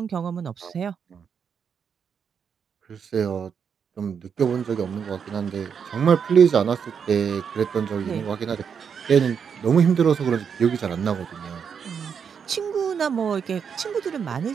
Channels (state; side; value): quieter; left; 6.9 dB